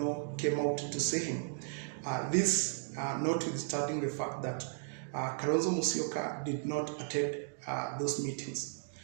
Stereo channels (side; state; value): left; silent; digital silence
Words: came out to see him. This notwithstanding the fact that Kalonzo Musyoka did not attend those meetings.